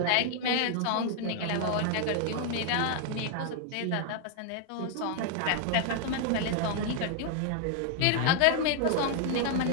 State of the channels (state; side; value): different; both; correlation 0.00